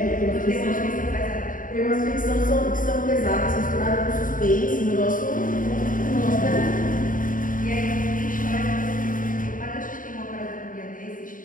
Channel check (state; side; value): late; right; 0.39 ms